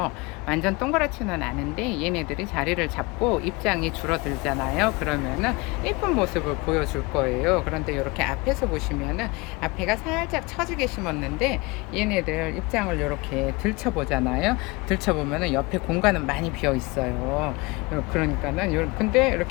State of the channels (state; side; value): quieter; right; 25.2 dB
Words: 완전 동그랗지는 않은데 얘네들이 자리를 잡고 입장이 줄어들잖아요. 그러면은 예쁜 모습을 보여줄 거예요. 그런데 이렇게 앞에서 보시면은 앞에가 살짝 처지게 심었는데 얘네들 입장을 이렇게 들춰보잖아요. 들춰보면은 옆에 공간은 많이 비어 있어요. 그러니까는 근데